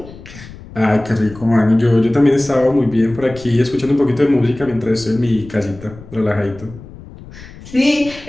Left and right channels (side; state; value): left; noise; rumble, 18 dB below the sound